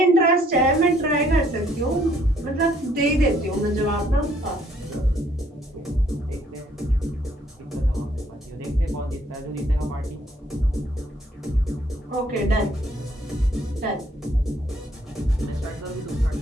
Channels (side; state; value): both; normal; correlation 0.65